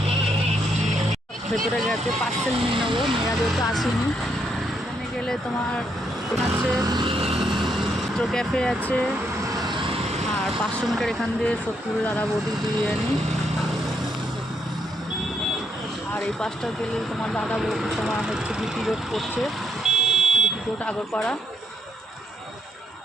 ভেতরে গেছে পার্সেল নিয়ে নেবো, মেয়েরা যেহেতু আসেনি। এখানে গেলে তোমার আছে তো ক্যাফে আছে, আর 500 মিটার এখান দিয়ে সত্যুরের দাদা বৌদির বিরিয়ানি। আর এই পাশটা গেলে তোমার দাদা বৌদি তোমার হচ্ছে বিপি রোড পড়ছে, বিপি রোড আগরপাড়া।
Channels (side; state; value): both; normal; correlation 0.75